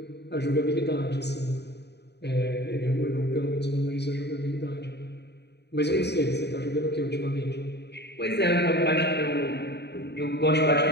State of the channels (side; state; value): right; late; 0.49 ms